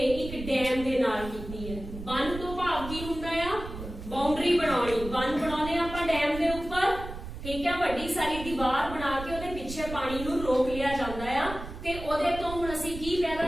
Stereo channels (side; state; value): right; noise; rumble, 10 dB below the sound